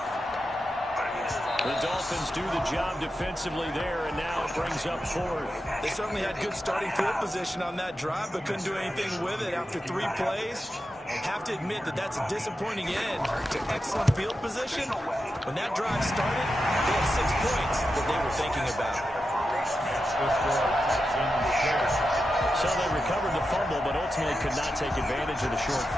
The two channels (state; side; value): normal; both; correlation 0.89